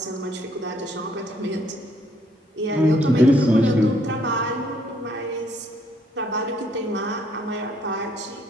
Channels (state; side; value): normal; both; correlation 0.68